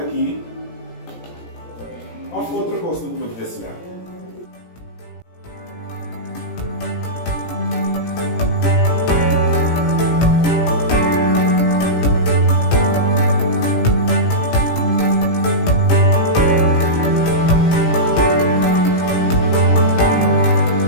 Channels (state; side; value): late; right; 17 ms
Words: aqui. Ou outra coisa não pode descer.